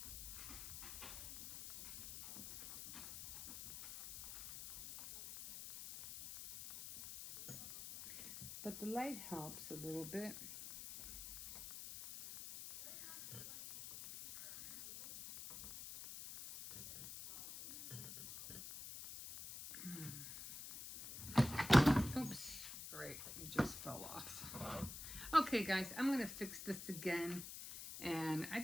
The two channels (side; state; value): left; noise; hiss, 10 dB below the sound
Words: But the light helps a little bit. Oops, great, it just fell off. Okay guys, I'm gonna fix this again, and I